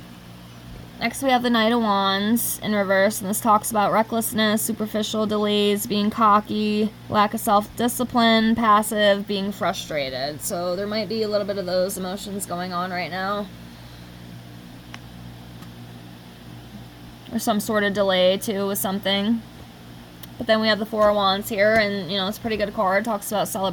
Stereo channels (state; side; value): identical; both; correlation 1.00